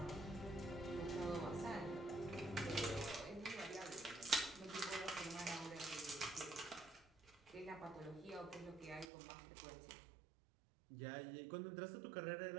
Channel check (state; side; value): drops out; left; at 9.1 s